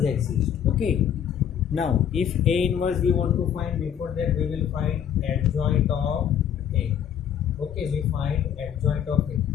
exists. Okay, now if A inverse we want to find, before that we will find adjoint of A. Okay, we find adjoint of A.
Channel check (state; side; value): quieter; right; 9.1 dB